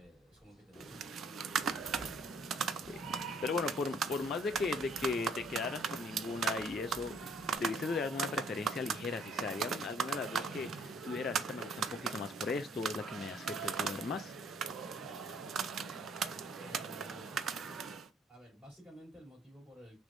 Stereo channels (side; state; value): both; normal; correlation 0.62